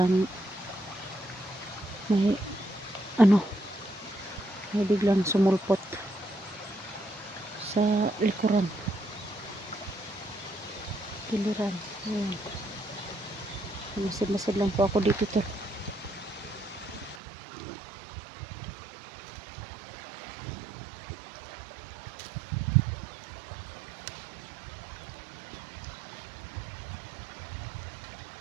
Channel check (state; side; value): drops out; left; at 17.2 s